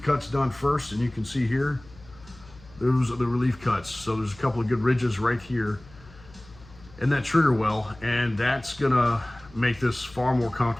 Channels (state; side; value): noise; left; hum, 22 dB below the sound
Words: cuts done first, and you can see here, those are the relief cuts. So there's a couple of good ridges right here in that trigger well, and that's gonna make this far more